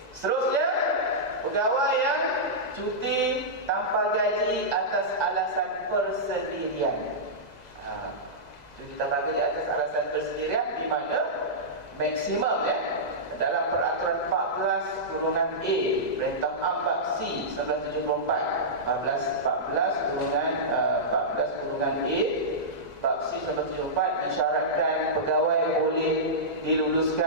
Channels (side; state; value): right; late; 2.0 ms